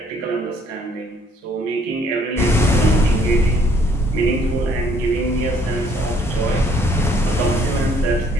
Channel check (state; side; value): normal; both; correlation 0.63